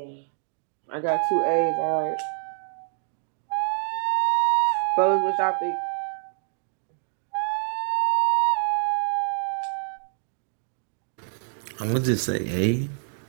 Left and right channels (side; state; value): left; silent; digital silence